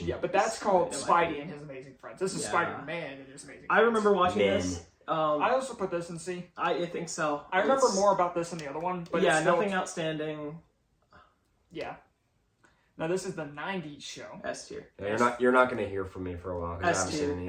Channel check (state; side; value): identical; both; correlation 1.00